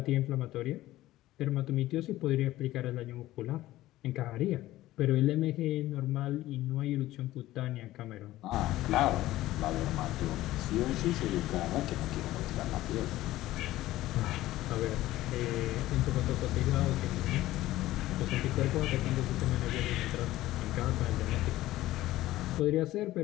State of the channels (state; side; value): quieter; right; 15.9 dB